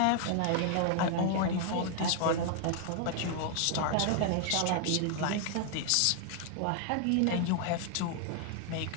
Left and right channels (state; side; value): different; both; correlation 0.00